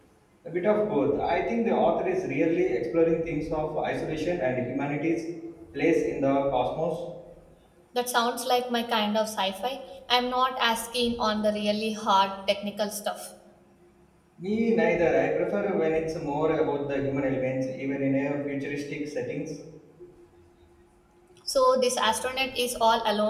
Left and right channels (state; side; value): identical; both; correlation 1.00